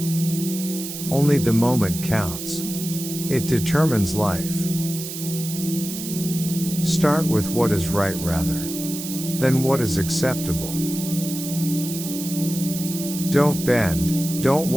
Only the moment counts. It determines life. Start with what is right rather than what is acceptable. Don't bend, don't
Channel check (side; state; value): right; noise; hiss, 8 dB below the sound